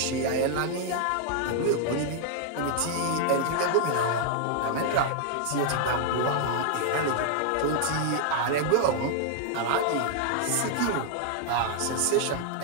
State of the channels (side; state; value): both; different; correlation -0.01